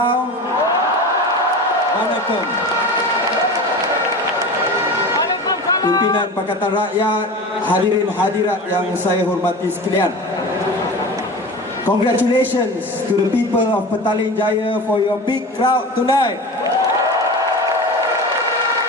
Waalaikum. Pimpinan Pakatan Rakyat, hadirin hadirat yang saya hormati sekalian. Congratulations to the people of Petaling Jaya for your big crowd tonight.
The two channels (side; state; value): both; normal; correlation 0.32